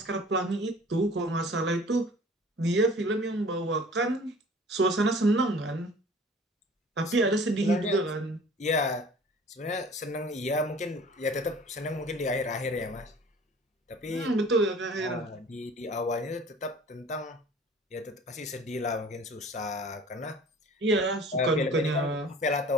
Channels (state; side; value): normal; both; correlation 0.47